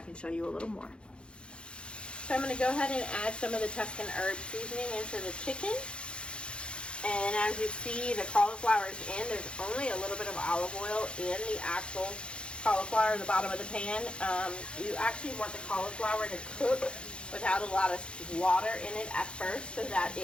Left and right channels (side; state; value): right; late; 0.056 ms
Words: can show you a little more. So I'm gonna go ahead and add some of the Tuscan herb seasoning into the chicken. And as you see, the cauliflower is in. There's only a little bit of olive oil in the actual cauliflower at the bottom of the pan. You actually want the cauliflower to cook without a lot of water in it at first so that